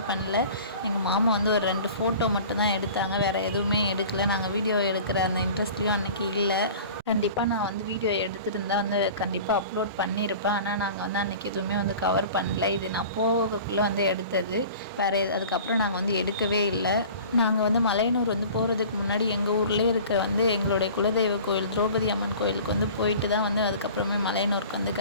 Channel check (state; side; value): inverted; both; correlation -0.42